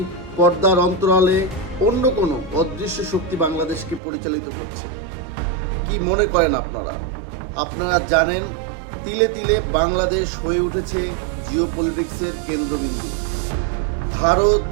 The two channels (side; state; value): left; drops out; at 4.0 s